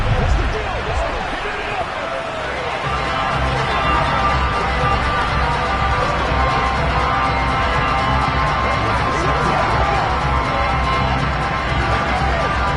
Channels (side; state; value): both; identical; correlation 1.00